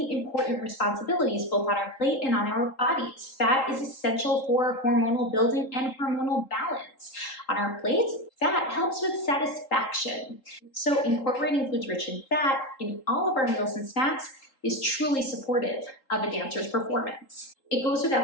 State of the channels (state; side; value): late; right; 3.8 ms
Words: important responsibilities both on our plate and on our bodies. Fat is essential for hormonal building and hormonal balance. On our plates, fat helps with satisfaction. So incorporating foods rich in fat in all of our meals and snacks is truly supportive of a dancer's performance. It goes